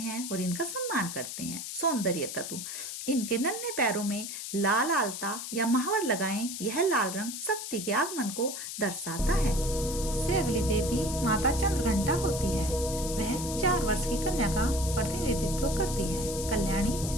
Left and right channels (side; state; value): left; noise; hiss, 7 dB below the sound